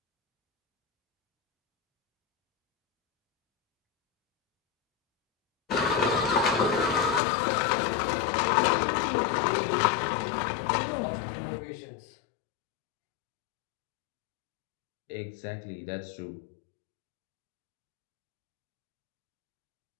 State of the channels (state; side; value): drops out; right; at 7.2 s